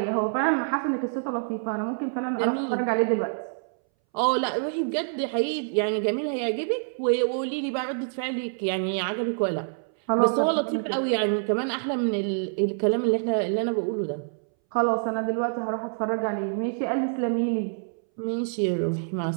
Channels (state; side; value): silent; left; 61 dB below the other